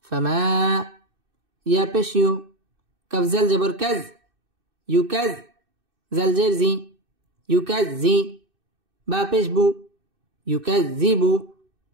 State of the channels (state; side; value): late; left; 2.6 ms